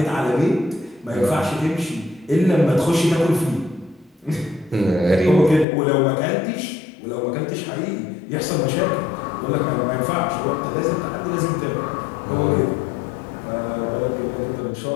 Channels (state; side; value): drops out; right; at 5.7 s